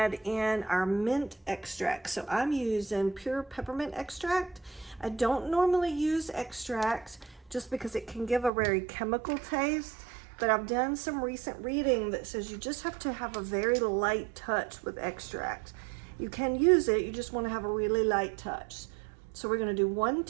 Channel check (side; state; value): left; drops out; at 8.5 s